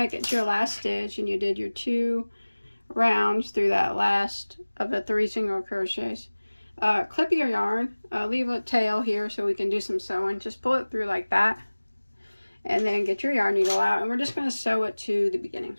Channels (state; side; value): inverted; both; correlation -1.00